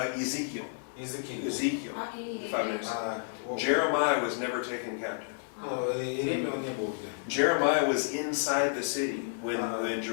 Ezekiel. Ezekiel. А Иеремия? 596. Jeremiah was never taken captive. Иеремия он не был где. Jeremiah was inside the city when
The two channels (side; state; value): right; silent; digital silence